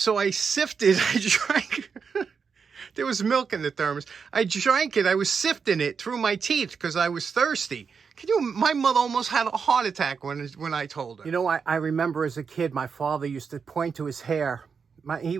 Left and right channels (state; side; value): quieter; left; 5.9 dB